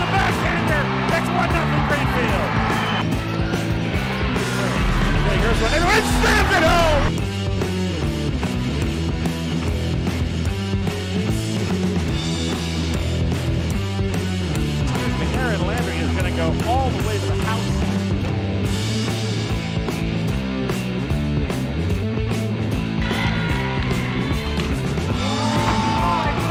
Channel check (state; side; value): identical; both; correlation 1.00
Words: backhander, that's 1-0 Greenfield. Here's one, and it slams it home. Aaron Landry is going to go all the way to the house.